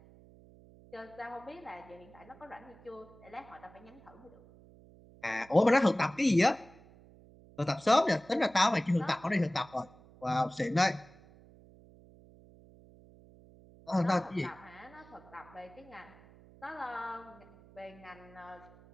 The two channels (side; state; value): right; noise; hum, 23 dB below the sound